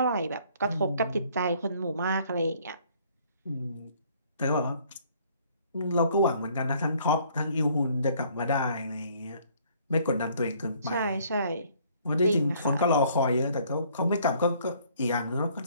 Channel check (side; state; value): both; inverted; correlation -0.60